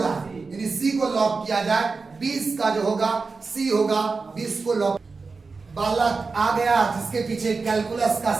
है, यानी सी को लॉक किया जाए। 20 का जो होगा सी होगा, 20 को लॉक। बालक आ गया जिसके पीछे कैलकुलस का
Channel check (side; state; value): left; quieter; 4.3 dB